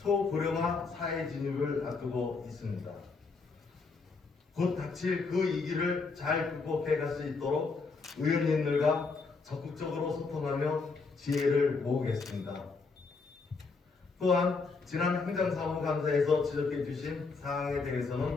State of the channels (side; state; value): right; quieter; 4.4 dB